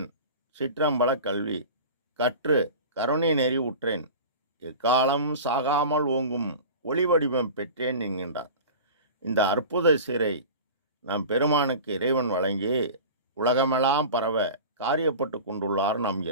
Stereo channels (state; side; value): inverted; both; correlation -0.35